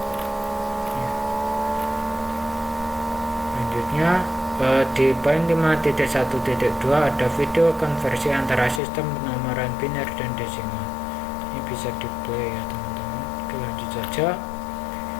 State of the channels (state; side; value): drops out; right; at 8.8 s